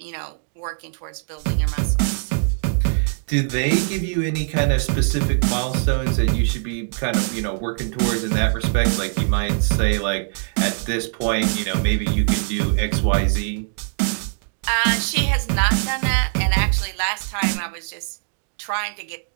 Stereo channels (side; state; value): left; silent; digital silence